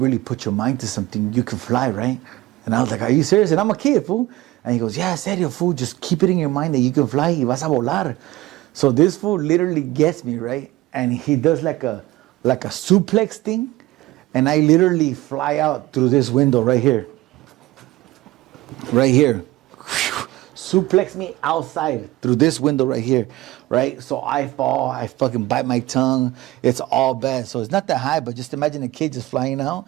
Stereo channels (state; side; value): quieter; left; 17.8 dB